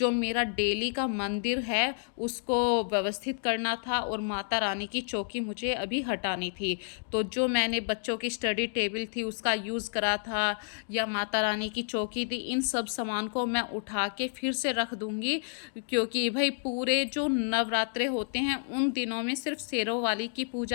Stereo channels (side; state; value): right; silent; digital silence